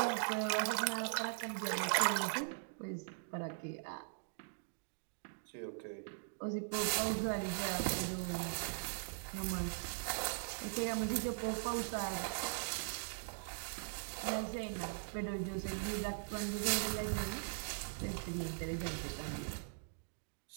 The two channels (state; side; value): silent; left; digital silence